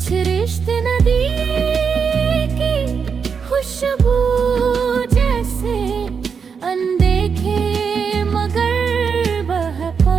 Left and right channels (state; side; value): quieter; left; 6.1 dB